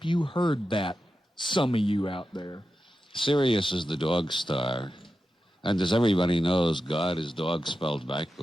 you heard that. Some of you out there. Sirius is the dog star. And as everybody knows, God is dog spelled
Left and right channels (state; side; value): normal; both; correlation 0.91